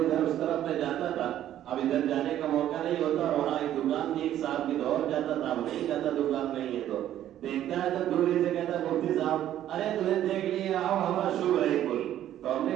اس طرف میں جاتا تھا, اب ادھر جانے کا موقع نہیں ہوتا. اور وہاں ایک دکان تھی, ایک صاحب کی دور جاتا تھا, اب نہیں جاتا, دکان نہیں ہے تو دیکھتا ہے تو دوری سے کہتا ہے مفتی صاحب ارے تمہیں دیکھ لیا, آؤ ہمارا شکر ہے کل. تو ہم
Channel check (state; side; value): quieter; left; 11.9 dB